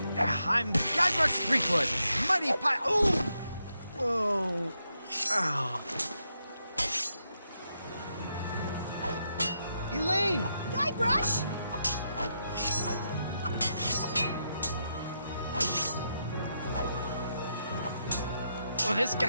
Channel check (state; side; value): inverted; both; correlation -0.82